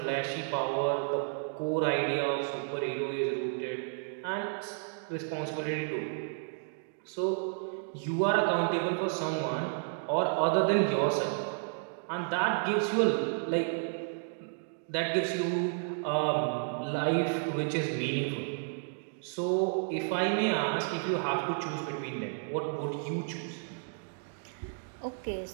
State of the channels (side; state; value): left; silent; digital silence